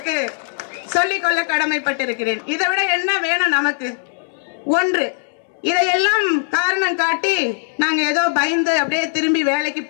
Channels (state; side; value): silent; right; digital silence